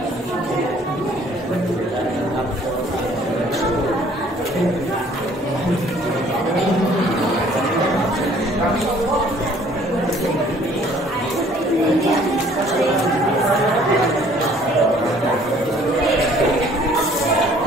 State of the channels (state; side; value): normal; both; correlation 0.57